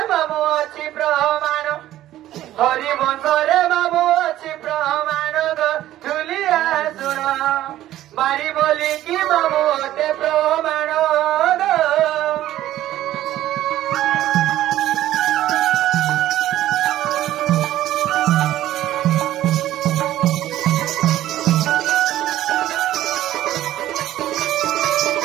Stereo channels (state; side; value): quieter; left; 13.7 dB